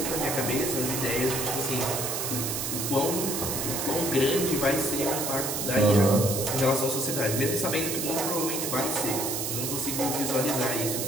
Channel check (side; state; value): right; noise; hiss, 2 dB below the sound